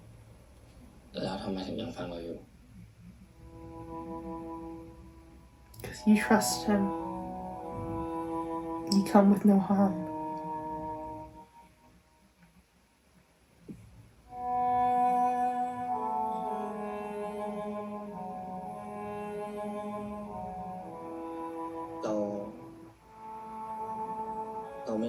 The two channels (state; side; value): identical; both; correlation 1.00